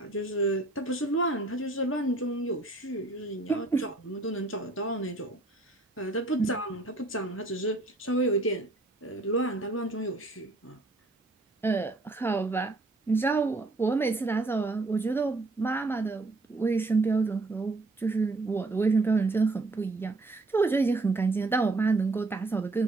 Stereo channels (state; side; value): quieter; left; 3.1 dB